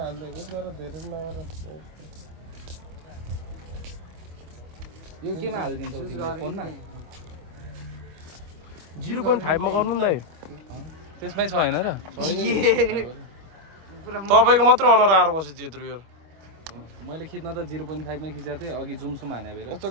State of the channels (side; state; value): left; late; 25 ms